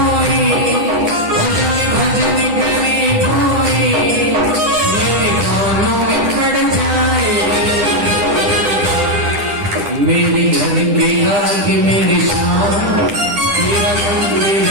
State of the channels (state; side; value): late; left; 10 ms